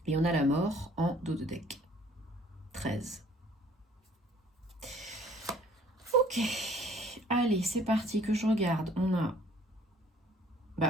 Et on a la mort en dos de deck. 13. Ok. Allez, c'est parti que je regarde. On a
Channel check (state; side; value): normal; both; correlation 0.56